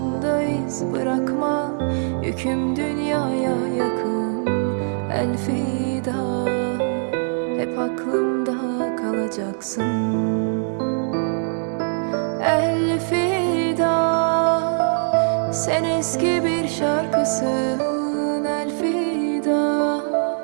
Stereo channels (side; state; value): left; silent; digital silence